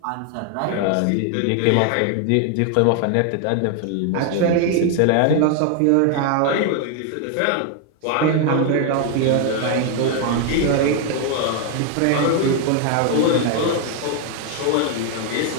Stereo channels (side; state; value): both; different; correlation 0.00